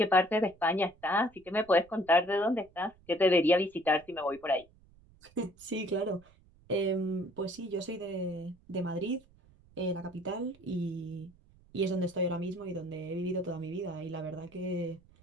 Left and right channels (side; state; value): right; noise; rumble, 28 dB below the sound